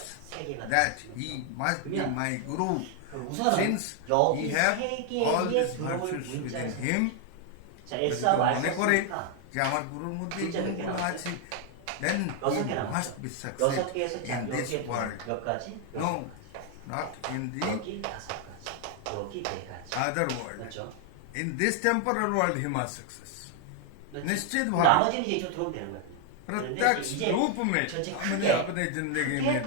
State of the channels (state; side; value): different; both; correlation 0.00